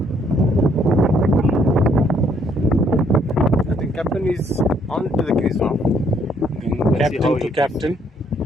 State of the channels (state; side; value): normal; both; correlation 0.67